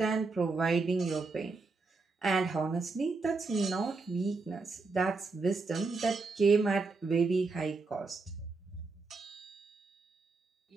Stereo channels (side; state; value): left; quieter; 3.9 dB